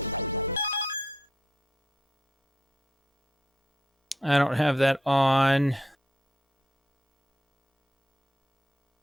I don't have that on.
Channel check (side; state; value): both; normal; correlation 0.77